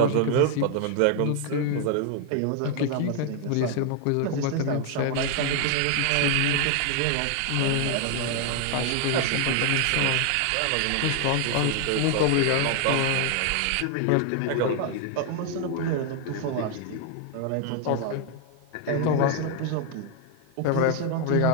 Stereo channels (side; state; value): both; different; correlation 0.00